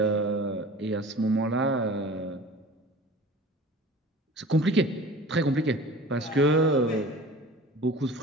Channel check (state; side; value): normal; both; correlation 0.41